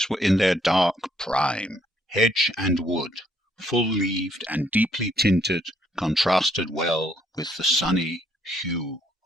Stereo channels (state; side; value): normal; both; correlation 0.69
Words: were in their dark prime, hedge and wood, full-leaved and deeply tinted, contrasted well with the sunny hue